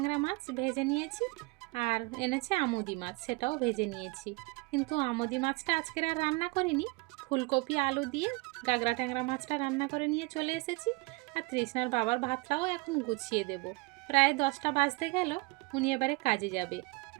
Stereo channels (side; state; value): left; quieter; 26.8 dB